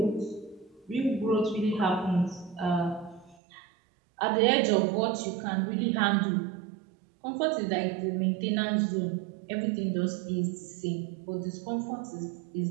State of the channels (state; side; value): drops out; left; at 3.4 s